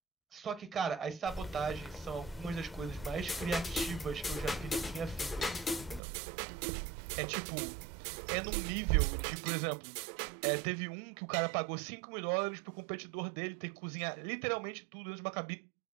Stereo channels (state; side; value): drops out; left; at 6.0 s